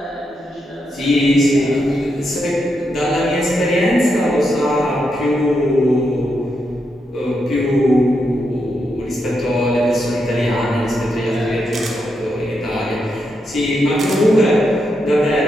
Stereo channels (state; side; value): normal; both; correlation 0.83